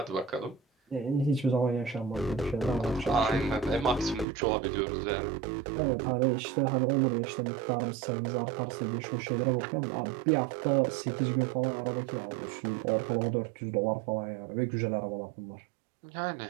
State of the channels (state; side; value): drops out; left; at 4.2 s